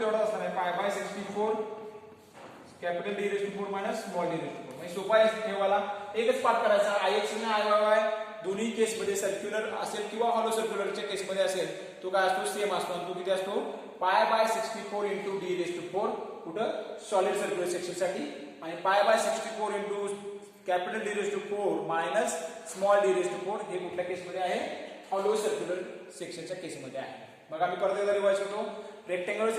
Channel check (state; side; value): identical; both; correlation 1.00